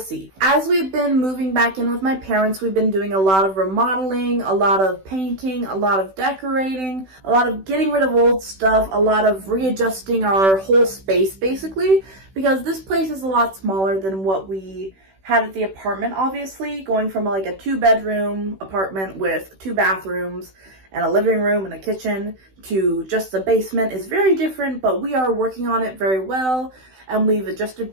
As we've been moving back in with my parents, we've been doing a lot of remodeling, a lot of painting, a lot of decorating, a lot of getting rid of old stuff, a lot of readjusting our whole space basically, because this place is a lot smaller than what we had at the apartment, obviously. Going from like a 2-bedroom apartment with 2 bathrooms and a living room and a kitchen to just a basement is very different, but we are working on it very well and we've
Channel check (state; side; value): late; left; 16 ms